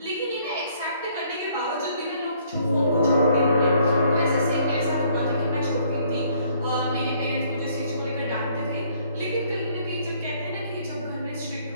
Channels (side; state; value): both; inverted; correlation -0.63